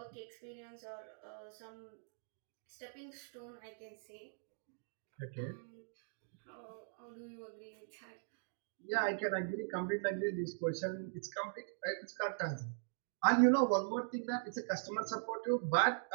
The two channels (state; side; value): silent; left; digital silence